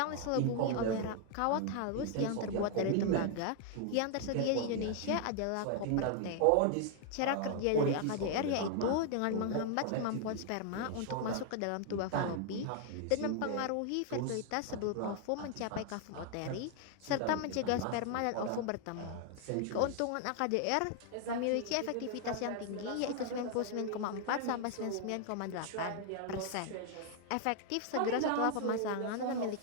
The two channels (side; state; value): both; different; correlation 0.00